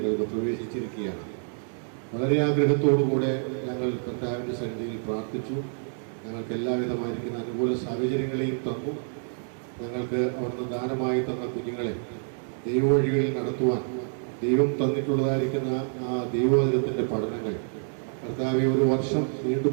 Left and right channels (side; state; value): left; silent; digital silence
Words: പ്രവേശിച്ചിരിക്കുകയാണ്. വളരെ ആഗ്രഹത്തോടുകൂടെ ഞങ്ങൾ കർത്താവിൻ്റെ സന്നിധിയിൽ പ്രാർത്ഥിച്ചു. ഞങ്ങൾക്ക് എല്ലാവിധമായിരിക്കുന്ന അനുകൂല സാഹചര്യങ്ങളെയും തന്നു. ഞങ്ങൾക്ക് അവിടുന്ന് ദാനമായി തന്ന കുഞ്ഞുങ്ങളെ ദൈവവഴികളിൽ നടത്തുവാൻ ദൈവം തന്നിട്ടുള്ളതായിരിക്കുന്ന ആ ദൈവവചനത്തിൻ്റെ പഠനങ്ങൾ കർത്താവെ ഒരു വർഷം